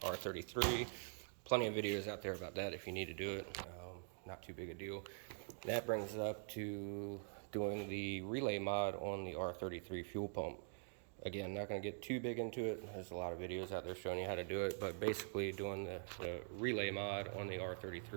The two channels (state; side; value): silent; left; digital silence